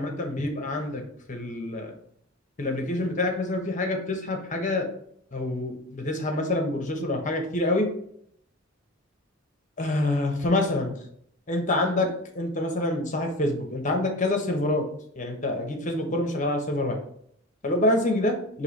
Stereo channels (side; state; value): both; normal; correlation 0.31